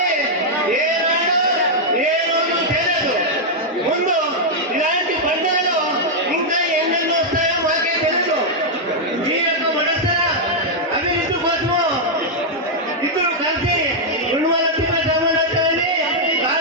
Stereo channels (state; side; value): normal; both; correlation -0.04